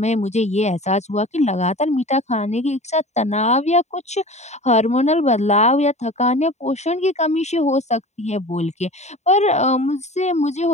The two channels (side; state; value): right; late; 0.33 ms